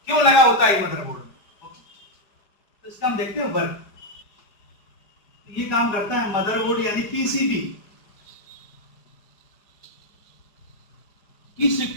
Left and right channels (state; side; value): late; right; 4.9 ms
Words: क्यों लगा होता है मदरबोर्ड में। तो इसका हम देखते हैं वर्क। ये काम करता है मदरबोर्ड यानी पीसीबी, की